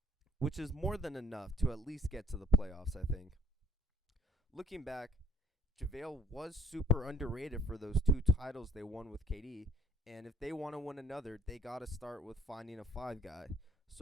which is more than enough to at least get to the playoffs, I think. Looking back, JaVale was super underrated for those 2 titles they won with KD, and if they want to win another, they got to start with finding a 5 guy.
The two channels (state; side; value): normal; both; correlation 0.55